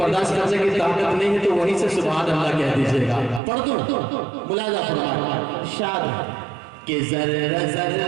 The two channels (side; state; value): left; drops out; at 3.4 s